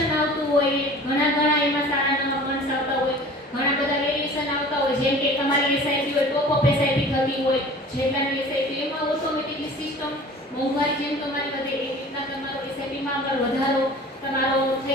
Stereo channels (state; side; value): normal; both; correlation 0.43